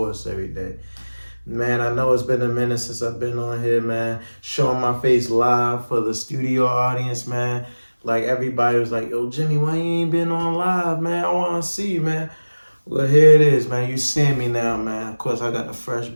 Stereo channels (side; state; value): both; inverted; correlation -1.00